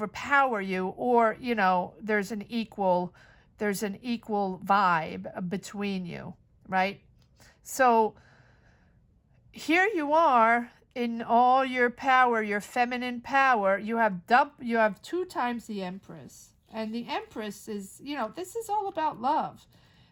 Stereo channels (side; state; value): both; identical; correlation 1.00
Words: you, or, there's an equal vibe between you, right? So here you are in all your power, your feminine power. You have 2 times the Empress. And the Empress is, this is all about love.